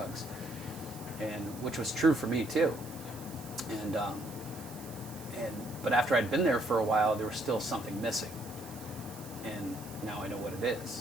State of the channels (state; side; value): noise; right; hiss, 16 dB below the sound